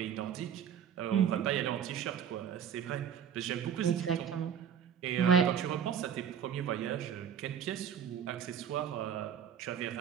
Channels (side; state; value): left; quieter; 8.3 dB